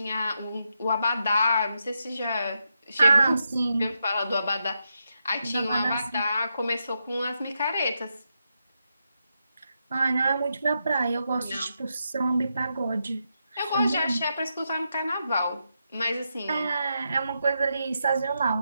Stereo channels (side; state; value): both; inverted; correlation -0.84